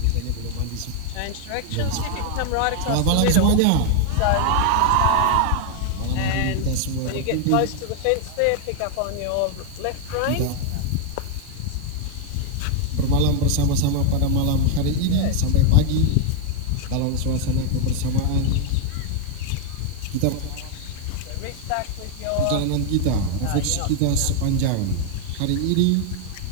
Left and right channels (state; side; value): different; both; correlation 0.00